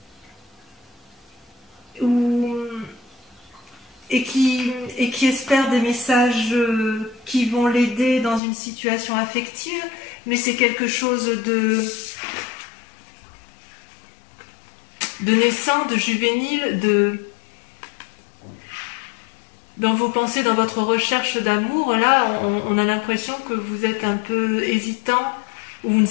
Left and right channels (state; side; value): drops out; right; at 8.4 s